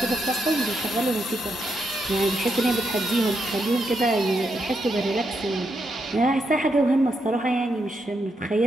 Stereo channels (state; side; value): normal; both; correlation 0.81